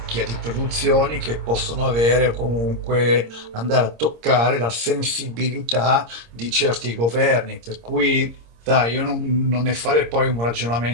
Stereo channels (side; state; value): left; late; 26 ms